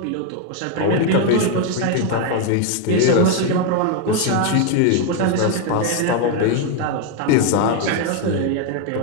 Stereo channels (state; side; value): different; both; correlation 0.01